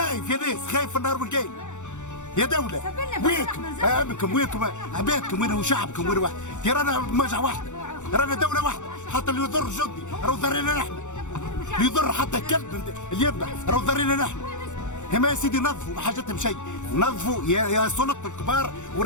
يا ناس خايف في النهار والليل يا دولة وينكم امنكم وينكم عبادكم وين وشعبكم وين واحد يا رانا مجمع واحده رانا دولة واحده حتى اللي يضر جندي راهو ضرينا نحن اللي يضر حتى الكلب اللي يذبح راهو ضرينا نحن هما يا سيدي نظفوا ما حاجتهم شيء نظفوا يا سلطة الكبار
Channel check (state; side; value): late; right; 0.85 ms